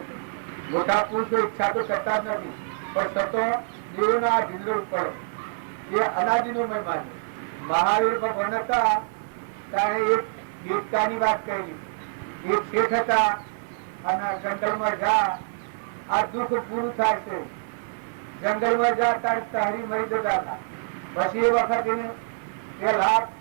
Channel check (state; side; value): silent; left; digital silence